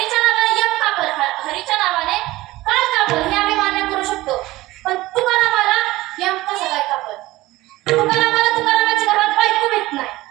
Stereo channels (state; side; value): quieter; left; 18.4 dB